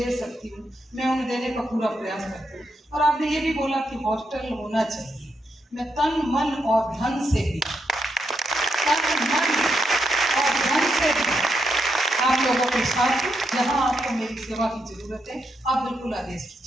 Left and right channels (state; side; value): normal; both; correlation 0.81